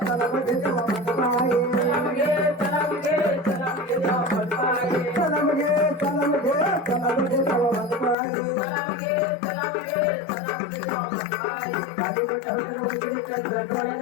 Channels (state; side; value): drops out; right; at 8.2 s